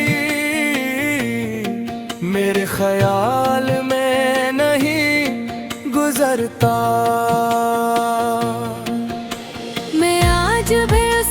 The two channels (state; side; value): identical; both; correlation 1.00